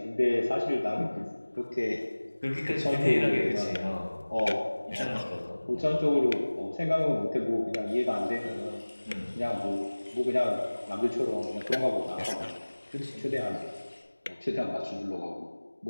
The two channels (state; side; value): inverted; both; correlation -1.00